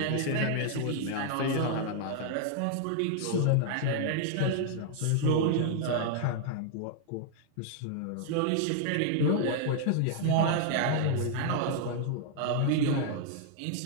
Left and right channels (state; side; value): different; both; correlation -0.01